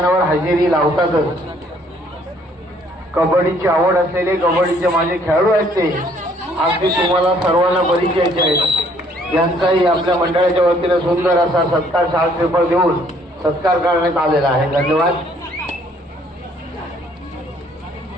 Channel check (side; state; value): both; normal; correlation 0.63